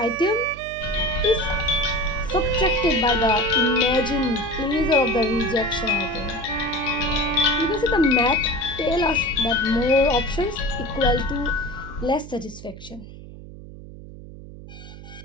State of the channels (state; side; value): noise; right; hum, 15 dB below the sound